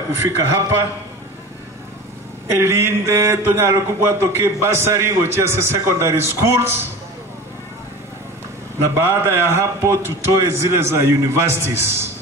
hapa. Elinde tonyalo kubwa toke basari gochia secondary schools, na baada ya hapo tutoe zile za universities.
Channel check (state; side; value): normal; both; correlation 0.35